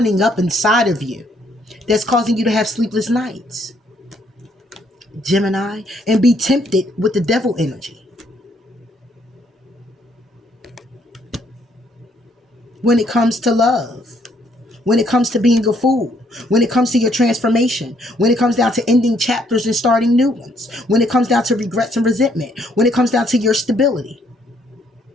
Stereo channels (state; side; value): normal; both; correlation 0.69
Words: up inside of you that's causing you to have sleepless nights, Gemini, and be tempted with the devil energy. When it comes to love, when it comes to being a fool, when it comes to your transformation, when it comes down to ending chapters and starting new ones, when it comes down to regrets and resentment, when it comes down to your stability,